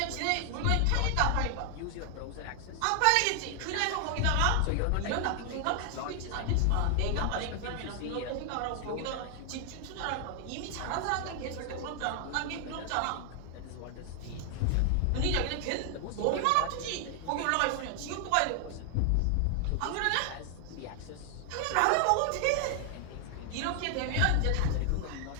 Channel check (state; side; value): different; both; correlation 0.00